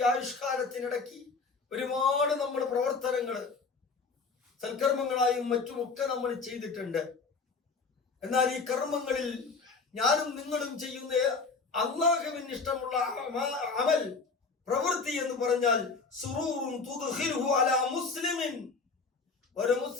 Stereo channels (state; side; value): quieter; right; 4.5 dB